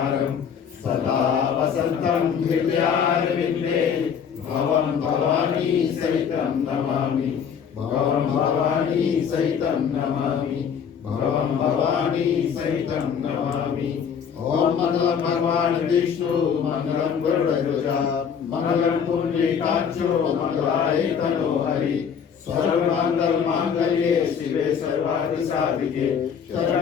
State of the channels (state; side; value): quieter; right; 7.3 dB